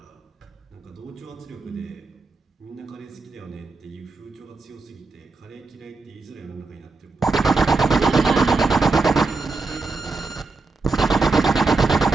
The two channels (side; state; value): left; quieter; 3.8 dB